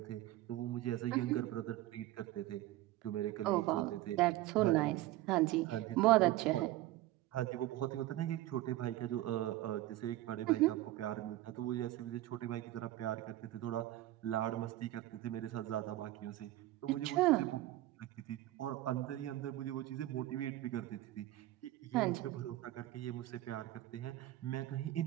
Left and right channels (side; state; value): left; quieter; 15.8 dB